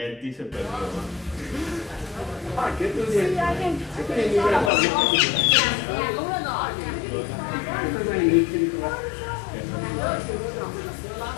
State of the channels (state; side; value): drops out; right; at 4.7 s